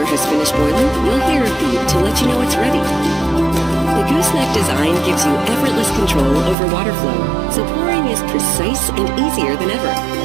has finished boiling, you'll hear a beep to let you know it's ready. The Gooseneck design gives you effortless control over water flow, so pouring is precise and easier than ever.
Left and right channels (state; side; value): drops out; left; at 6.6 s